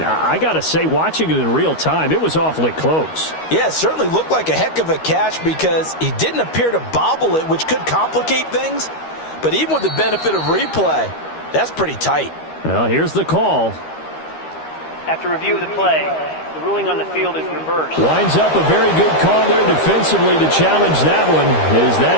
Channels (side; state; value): right; late; 13 ms